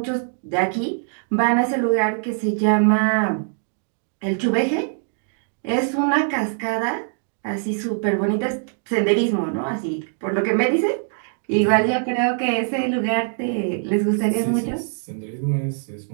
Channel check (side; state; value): left; silent; digital silence